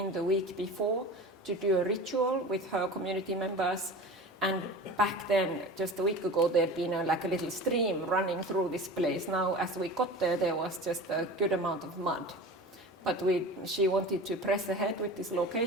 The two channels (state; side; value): normal; both; correlation 0.35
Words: the week before to do a ritual with her community members. And back then, just a week ago, there'd been a little stream running through this place. Now, as we got there was just a good amount of mud. But she wanted to press ahead with this